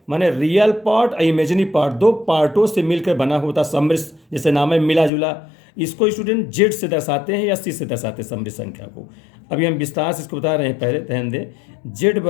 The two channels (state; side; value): drops out; right; at 5.1 s